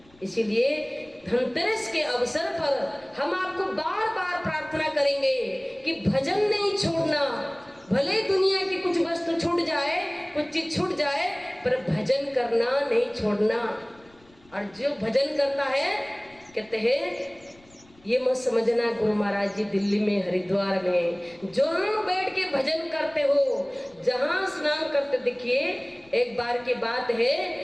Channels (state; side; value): noise; left; rumble, 29 dB below the sound